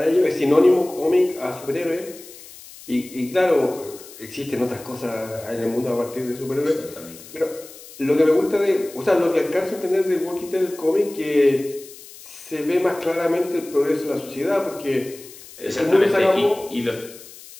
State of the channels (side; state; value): left; noise; hiss, 18 dB below the sound